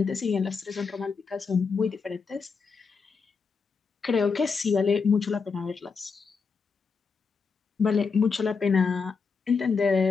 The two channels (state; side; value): quieter; right; 5.2 dB